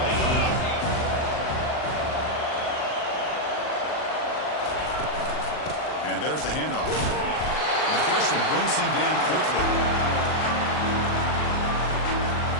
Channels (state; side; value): late; right; 39 ms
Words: coming up. And there's the handoff. And the freshman brings him down quickly.